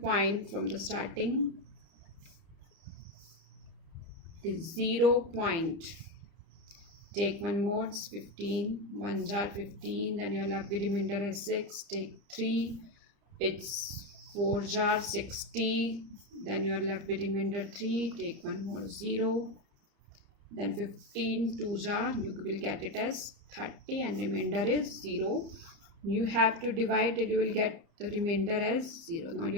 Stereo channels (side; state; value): left; late; 30 ms